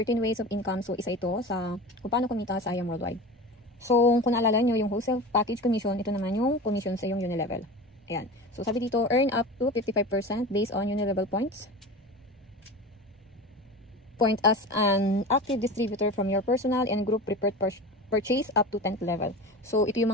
ways of income, so isa ito sa kung paano kumita sa IAM Worldwide. So kung naalala nyo yung wholesale package commission, ito naman yung commission sa yung Unilevel. Ayan. So sabi dito, earn up to 55% based on Unilevel points. Point as an active distributor from your personal and group preferred purchase up to 10th level. So, ito yung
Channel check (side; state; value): both; normal; correlation 0.31